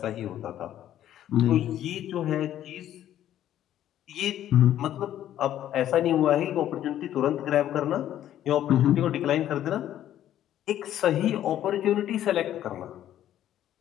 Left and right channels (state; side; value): quieter; right; 11.8 dB